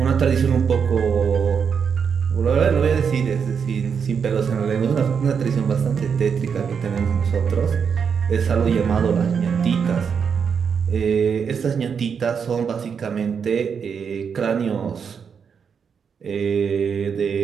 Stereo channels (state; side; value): quieter; left; 6.6 dB